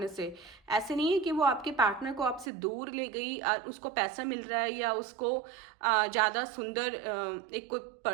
से। ऐसे नहीं है कि वो आपके पार्टनर को आपसे दूर ले गई और उसको पैसा मिल रहा है या उसको ज़्यादा सुंदर एक कोई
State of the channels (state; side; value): drops out; left; at 2.5 s